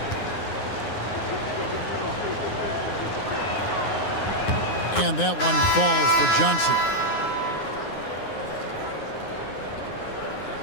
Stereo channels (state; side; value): late; right; 9.6 ms